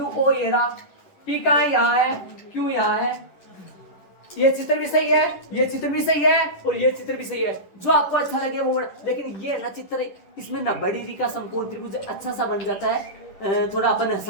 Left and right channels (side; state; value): right; late; 11 ms